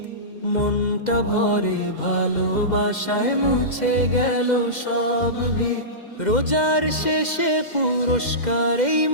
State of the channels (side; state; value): right; late; 2.1 ms